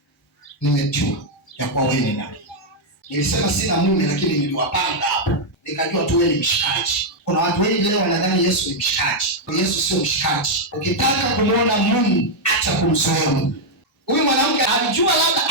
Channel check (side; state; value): both; normal; correlation -0.02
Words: nimejua ya kwa wewe ni nabii. Nilisema sina mume, lakini niliwapanga hapo. Nikajua tu wewe ni mshikaji. Kuna watu wengi leo wanadhani Yesu ni mshikaji. Yesu sio mshikaji. Ukitaka kumuona Mungu, acha kumzoea Mungu. Huyu mwanamke alijua labda